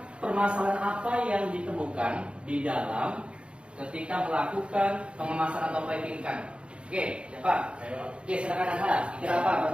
permasalahan apa yang ditemukan di dalam ketika melakukan pengemasan atau packing ikan? Oke, siapa? Oke, silakan Anda. Kira apa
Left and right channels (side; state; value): left; late; 0.057 ms